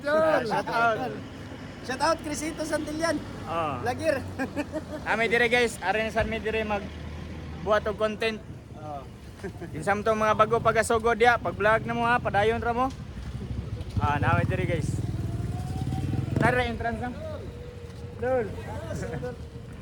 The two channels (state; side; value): identical; both; correlation 1.00